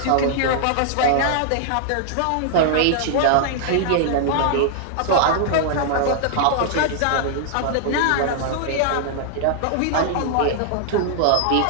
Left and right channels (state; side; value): different; both; correlation -0.01